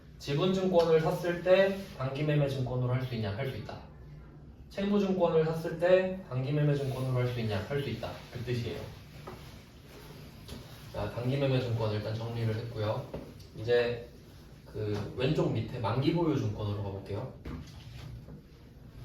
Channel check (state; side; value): identical; both; correlation 1.00